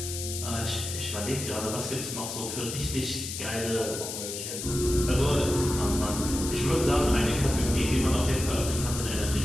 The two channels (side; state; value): left; noise; hiss, 6 dB below the sound